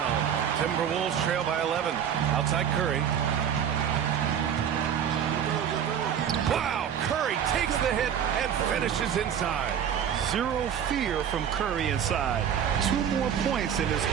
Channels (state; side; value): quieter; left; 8.7 dB